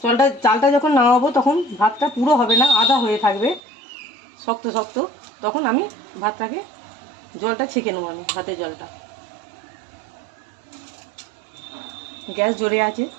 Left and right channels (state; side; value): drops out; left; at 3.6 s